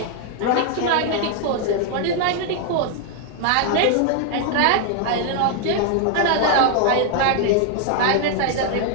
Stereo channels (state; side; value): different; both; correlation 0.00